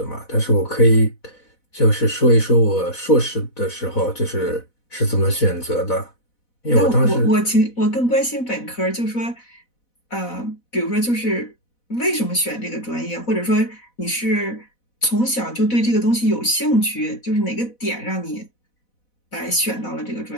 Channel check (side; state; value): right; late; 4.1 ms